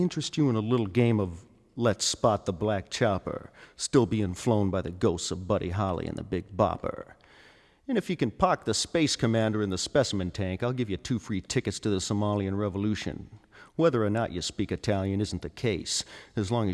you in a little game of Let's Spot the Black Chopper, still being flown by the ghosts of Buddy Holly and the Big Bopper? And if you can park the Space Commander in the specimen tank, I'll give you 2 free tickets to the Somalian Revolution. Whether or not you speak Italian isn't the case, as long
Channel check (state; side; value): identical; both; correlation 1.00